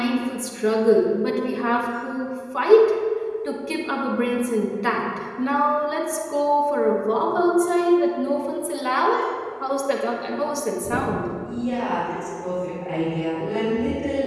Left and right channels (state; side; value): identical; both; correlation 1.00